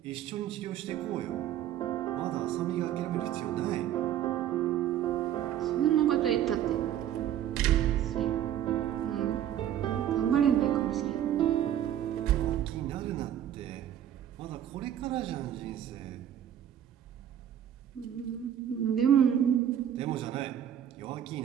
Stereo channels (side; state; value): left; quieter; 10.7 dB